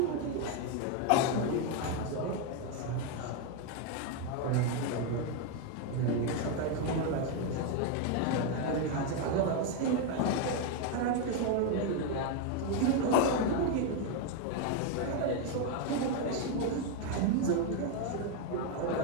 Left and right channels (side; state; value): both; different; correlation 0.02